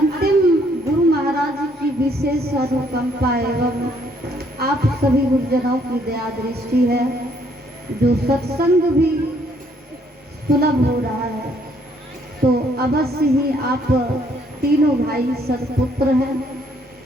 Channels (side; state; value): both; normal; correlation 0.67